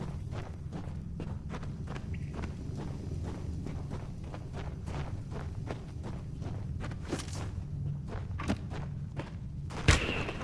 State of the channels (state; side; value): identical; both; correlation 1.00